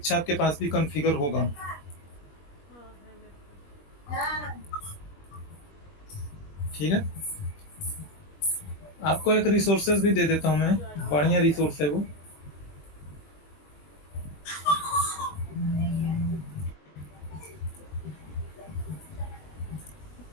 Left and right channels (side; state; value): right; late; 21 ms